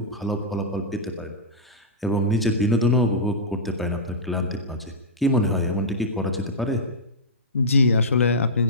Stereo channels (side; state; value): both; normal; correlation -0.12